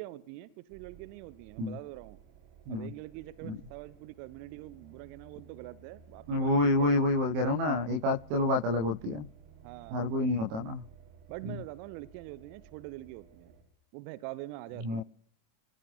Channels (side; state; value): left; late; 27 ms